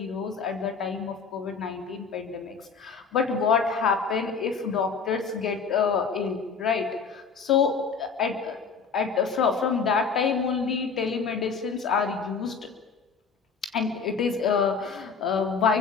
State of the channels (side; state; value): right; quieter; 5.5 dB